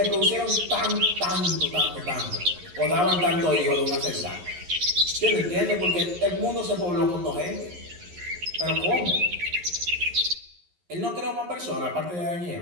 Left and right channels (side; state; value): left; late; 11 ms